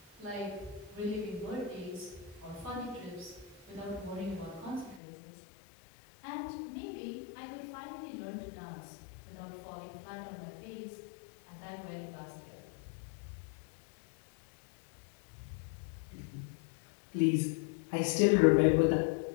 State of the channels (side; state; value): right; drops out; at 5.0 s